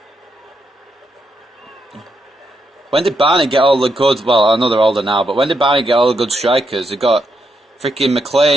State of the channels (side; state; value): both; normal; correlation 0.81